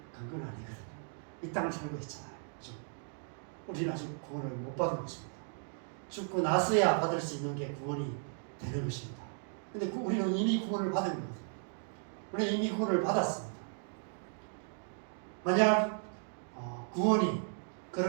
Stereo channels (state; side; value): silent; left; 54 dB below the other